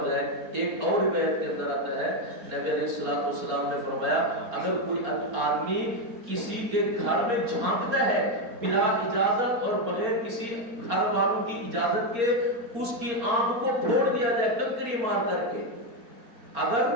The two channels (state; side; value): late; left; 4.3 ms